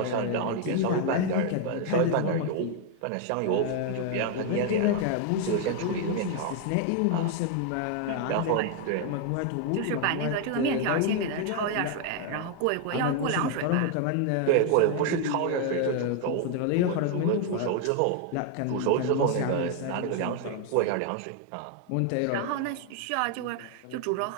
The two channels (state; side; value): different; both; correlation 0.00